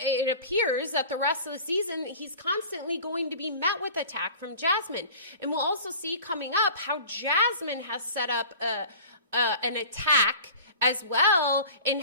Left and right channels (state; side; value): inverted; both; correlation -0.42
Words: appears that the rest of the season, he's constantly going to be met with attack from Jasmine. And we'll also see coming up how Jasmine has set up an attack as well in